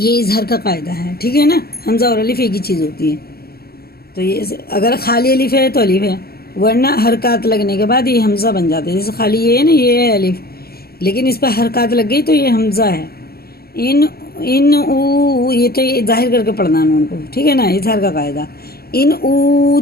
اظہار کا قاعدہ ہے، ٹھیک ہے نا. حمزہ اور الف ایک ہی چیز ہوتی ہے. تو یہ اگر خالی الف ہے تو الف ہے، ورنہ حرکات لگنے کے بعد یہ حمزہ بن جاتا ہے. جیسے خالی یہ ہے نا، یہ ہے الف، لیکن اس پہ حرکات لگ گئی تو یہ حمزہ ہے. ان او، یہ تو یہ ظاہر کر کے پڑھنا نون کو، ٹھیک ہے نا. اظہار کا قاعدہ. ان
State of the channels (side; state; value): right; late; 0.45 ms